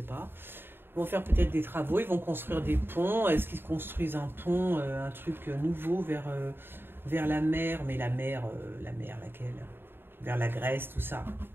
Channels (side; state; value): left; late; 0.10 ms